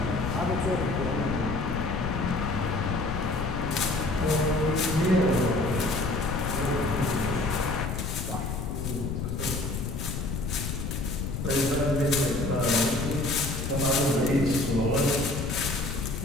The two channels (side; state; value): left; noise; rumble, 3 dB below the sound